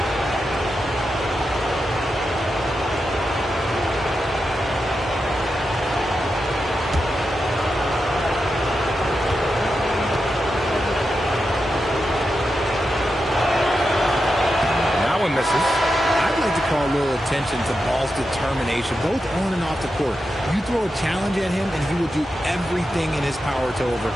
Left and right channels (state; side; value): normal; both; correlation 0.88